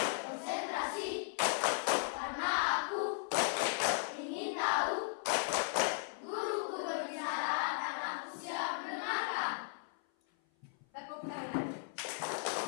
konsentrasi karena aku ingin tahu guruku berbicara dan aku siap mendengarkan. Tepuk tangan.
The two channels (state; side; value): silent; right; 53 dB below the other